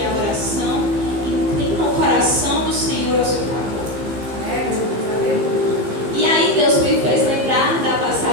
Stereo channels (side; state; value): left; late; 15 ms